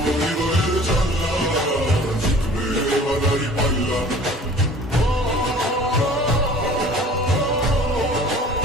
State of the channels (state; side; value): normal; both; correlation 0.47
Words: হৃদয়ের জানলা, জিতবে এবার দাঁড়ি পাল্লা।